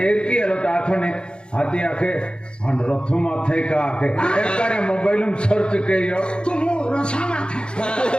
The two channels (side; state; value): right; late; 0.052 ms